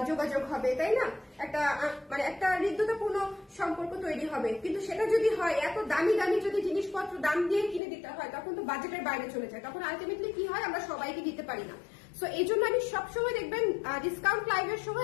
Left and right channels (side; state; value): right; drops out; at 7.8 s